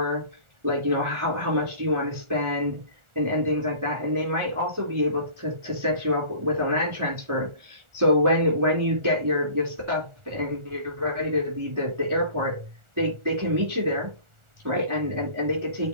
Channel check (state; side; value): late; left; 1.4 ms